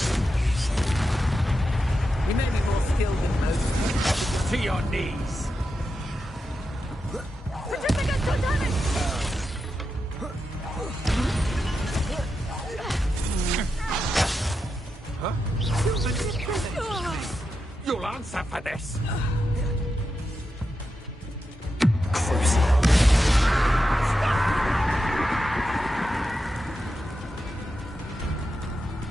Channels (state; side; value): normal; both; correlation 0.88